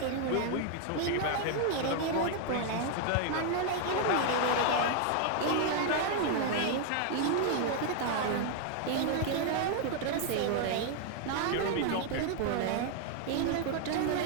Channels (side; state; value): both; different; correlation 0.00